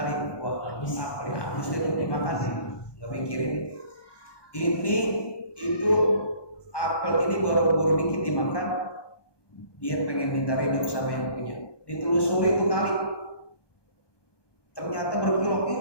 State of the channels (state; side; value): late; right; 1.2 ms